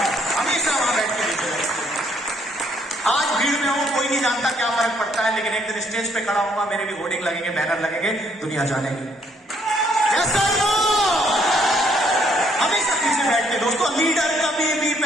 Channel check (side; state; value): both; normal; correlation 0.68